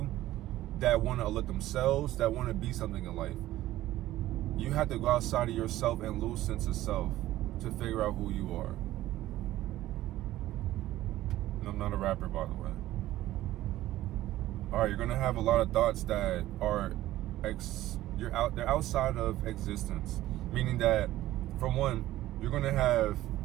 that want to uplift themselves, that want to be something in life. You have to go outside of yourself and lose sense of self to figure out who you are. And I'm not a rapper, by the way. all right, you're gonna have a lot of thoughts that are they're outside of existence. Meaning that, for one, you're gonna have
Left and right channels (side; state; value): left; quieter; 15.0 dB